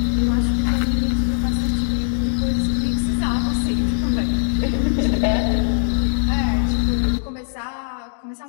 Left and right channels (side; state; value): right; silent; digital silence